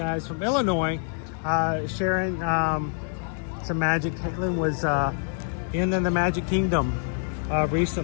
from Illinois. Sharing some magic. Caitlin was in the Magic Kingdom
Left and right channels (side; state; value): right; silent; 61 dB below the other